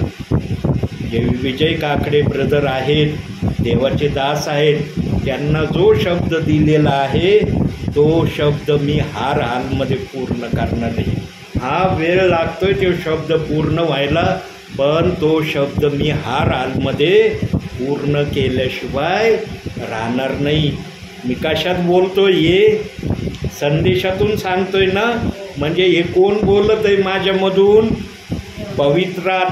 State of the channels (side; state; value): both; identical; correlation 1.00